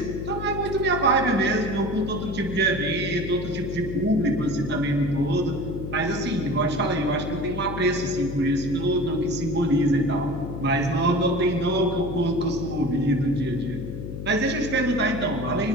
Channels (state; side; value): noise; left; hum, 7 dB below the sound